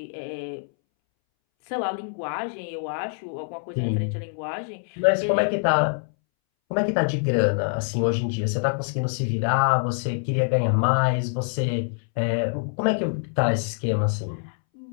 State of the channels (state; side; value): silent; right; 62 dB below the other